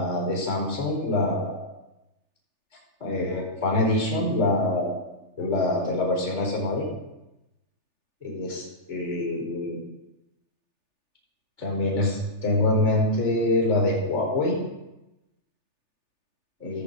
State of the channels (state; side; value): late; left; 3.4 ms